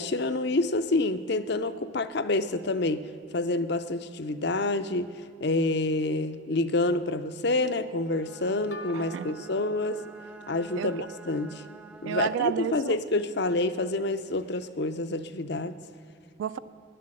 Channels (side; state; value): both; normal; correlation 0.08